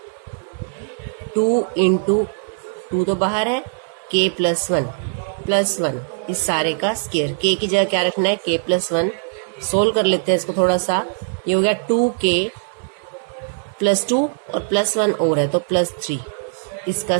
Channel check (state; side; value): silent; left; 58 dB below the other